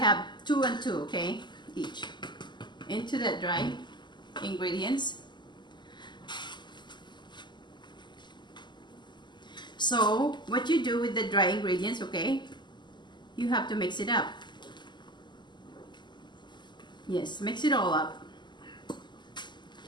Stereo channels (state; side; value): late; right; 0.21 ms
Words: have 2 and 2, okay, each. Into the dry ingredients. So what you do with the dry ingredients, okay, you have to mix it up. Yes, mix it all up.